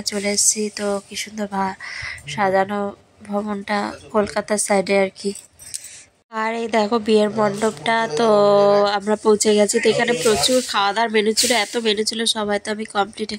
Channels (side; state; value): both; identical; correlation 1.00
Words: চলে এসেছি। তো কি সুন্দর সাজানো ভবনটা, কলকাতার সাইডে আর কি। আর এই দেখো বিয়ের মণ্ডপটা। তো আমরা পৌঁছে গেছি। তো এখানে প্রচুর খাওয়া দাওয়ার মেনু ছিল, এত মেনু ছিল সবাই তো আমি কমপ্লিট